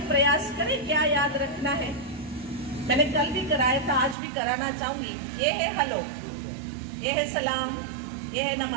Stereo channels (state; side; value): drops out; left; at 4.2 s